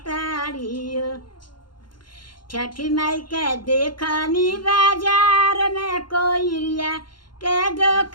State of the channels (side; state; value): right; late; 0.72 ms